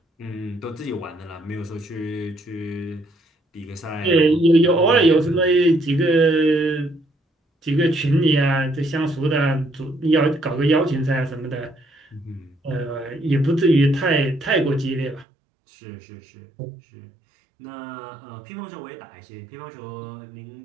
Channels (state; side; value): drops out; left; at 15.2 s